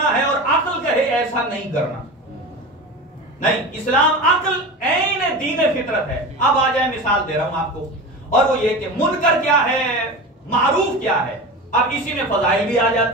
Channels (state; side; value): normal; both; correlation 0.28